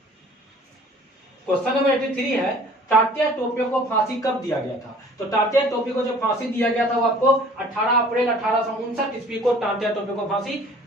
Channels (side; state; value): both; normal; correlation 0.51